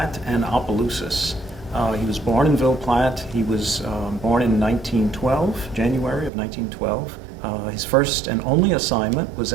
and Opelousas. He was born in Ville Platte. He was born in 1912, January of 1912. His first and only assignment was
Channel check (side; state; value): left; drops out; at 6.3 s